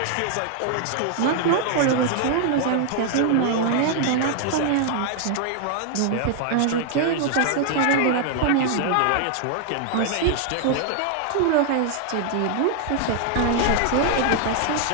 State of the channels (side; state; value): both; different; correlation 0.00